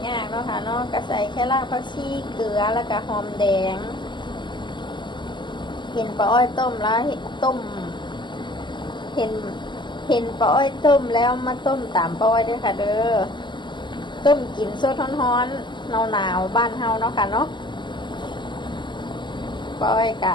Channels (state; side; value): late; right; 0.22 ms